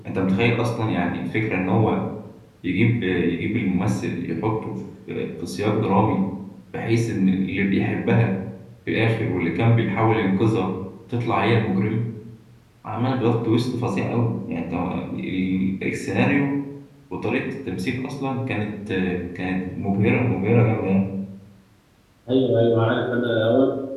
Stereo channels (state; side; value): identical; both; correlation 1.00